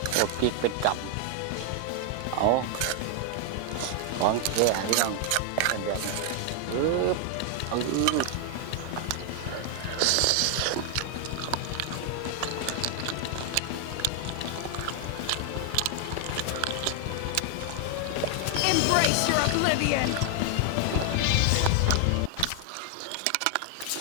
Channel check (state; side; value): different; both; correlation 0.00